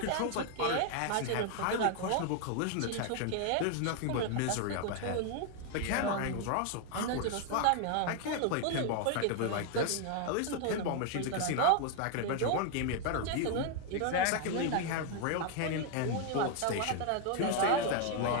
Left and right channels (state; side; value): different; both; correlation 0.00